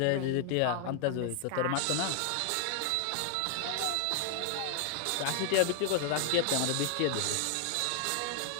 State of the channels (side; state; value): both; different; correlation 0.00